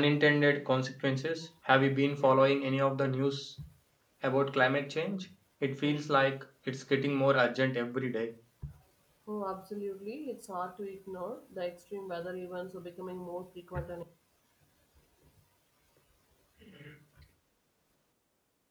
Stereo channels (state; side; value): identical; both; correlation 1.00